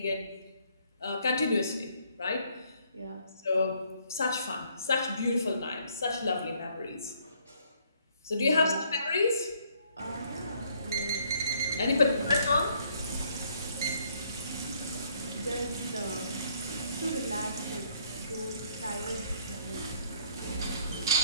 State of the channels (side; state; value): both; inverted; correlation -0.66